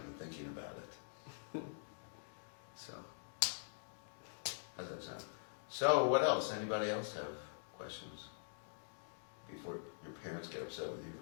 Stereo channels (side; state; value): right; silent; digital silence